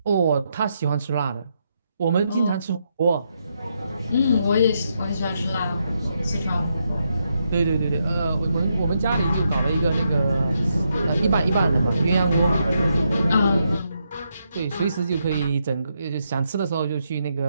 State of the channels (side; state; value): both; inverted; correlation -0.80